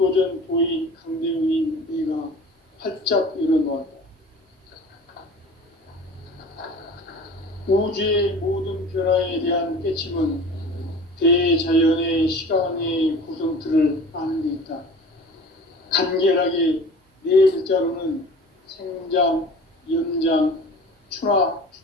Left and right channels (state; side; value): normal; both; correlation 0.41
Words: 도인 강대훈인 내가 활짝 열어놓았다. 우주의 모든 변화에 대한 깨침은 대자연의 시간의 구성틀을 아는 데 있다. 간결하게 네 글자로는 생장, 연장, 추나